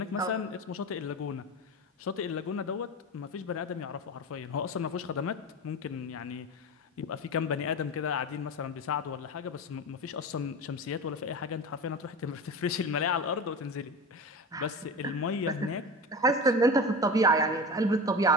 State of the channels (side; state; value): both; normal; correlation 0.28